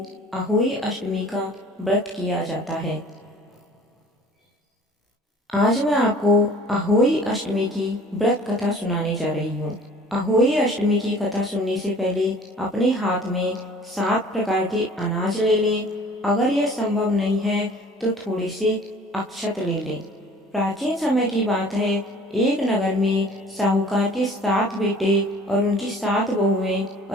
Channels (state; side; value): normal; both; correlation 0.49